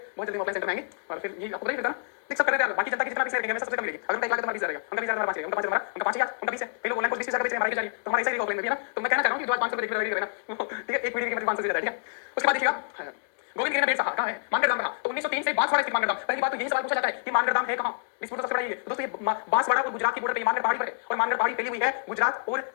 बहुत जल्दी ऑफलाइन सेंटर में आएंगे और फिर ये आपको नहीं पता देख सब कर रहे हैं, बाकी जनता की जितना भी रहेगा मैं सबसे कम मिलेगी, अगर मैं 1 लाख तुम्हारा 20,000 रहेगा, उनका 20,000 हमारा 5 रहेगा, उनका 5 हमारा, उनका 5,000 उनका 20 है, कई लोग ऑनलाइन कोर्स 20,000 बेच रहे हैं, हमारी जा रही है, तो हमारा ऐसा ही ऑफलाइन में भी है ना, तो मैं कहना चाह रहा हूं कि जो आज 500 रुपए देख रहे हैं ना, ठीक है एक वीडियो की कीमत 500 से ज्यादा है, ठीक है। उसके बाद देखिएगा गोविंद गिरी ने बेट कहां है मानगढ़ धाम कहां, तो 1903 से बांसवाड़ा स्थित मानगढ़ धाम, पहली बात तो यही सवाल पूछा जाता है कि मानगढ़ धाम है कहां, डिस्प्यूट सबसे बड़ा ये दोस्तों, ये बांसवाड़ा और गुजरात की बॉर्डर पे मानगढ़ पहाड़ी पर है और मानगढ़ पहाड़ी फैली हुई है गुजरात और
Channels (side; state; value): right; silent; digital silence